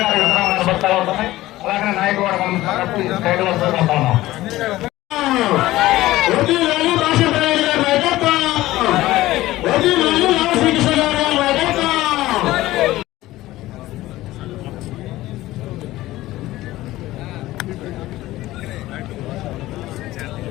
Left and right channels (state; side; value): quieter; right; 16.7 dB